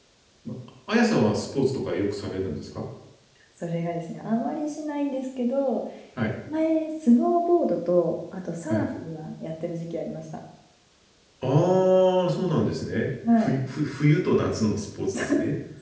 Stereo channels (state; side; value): identical; both; correlation 1.00